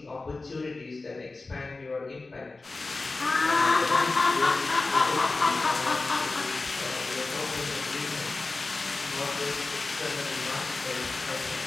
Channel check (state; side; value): quieter; right; 3.5 dB